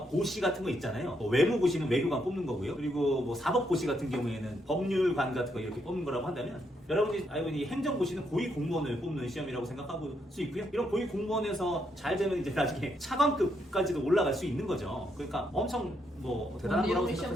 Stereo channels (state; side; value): normal; both; correlation 0.77